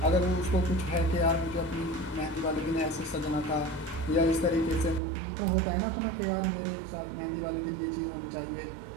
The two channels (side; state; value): left; drops out; at 5.0 s